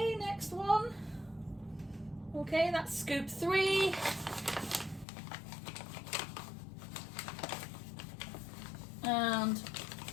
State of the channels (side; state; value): right; drops out; at 5.1 s